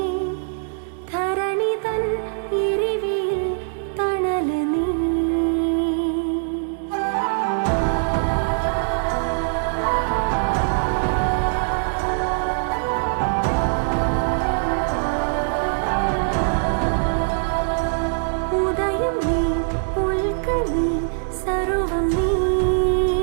ധരണി തൻ എരിവിൽ തണല് നീ. ഉദയം നീ, ഉൽക്ക നീ, സർവം നീ,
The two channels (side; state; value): left; silent; 58 dB below the other